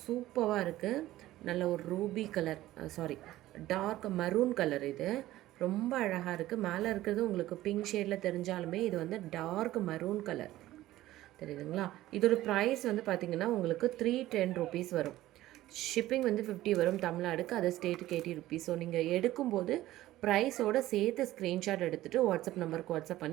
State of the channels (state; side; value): quieter; left; 15.5 dB